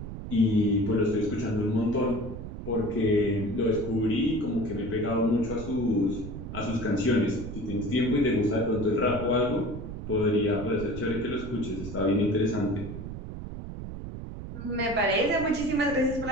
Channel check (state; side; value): noise; right; rumble, 9 dB below the sound